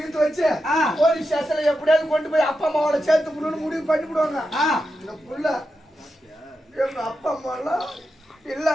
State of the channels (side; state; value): both; normal; correlation 0.88